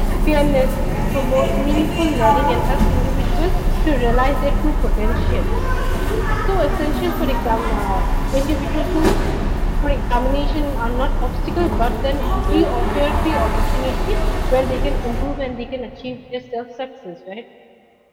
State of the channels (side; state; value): both; identical; correlation 1.00